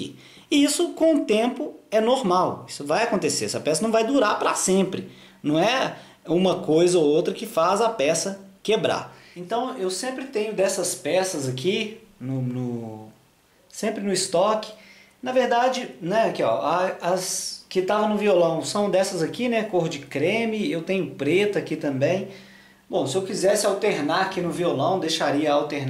E isso com o tempo é normal, isso vai acontecer. Essa peça não vai durar para sempre. Não é uma coisa ou outra que faz a peça quebrar. Então eu sempre tenho dessas peças aqui, sempre no estoque. Na verdade, né, aqui, ó, as que estavam no violão são dessas aqui, né, cor de creme. Eu tenho preta aqui também. Bom, se eu quisesse alternar aqui no violão, deixaria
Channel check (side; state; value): both; identical; correlation 1.00